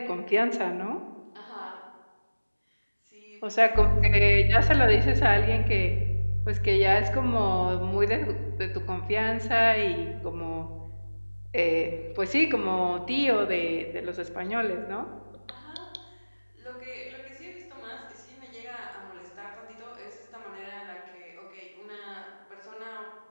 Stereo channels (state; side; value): inverted; both; correlation -1.00